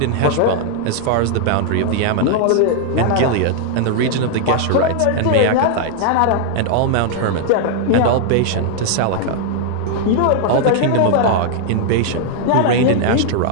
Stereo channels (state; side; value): different; both; correlation 0.00